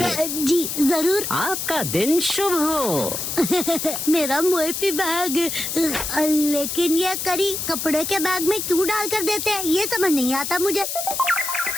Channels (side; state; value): left; noise; hiss, 4 dB below the sound